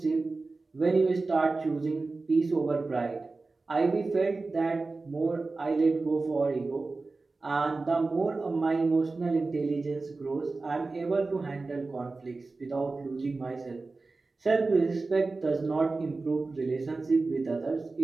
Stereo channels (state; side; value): quieter; left; 3.7 dB